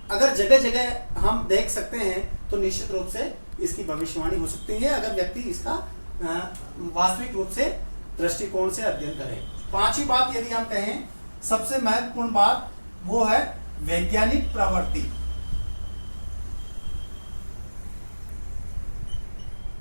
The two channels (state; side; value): inverted; both; correlation -1.00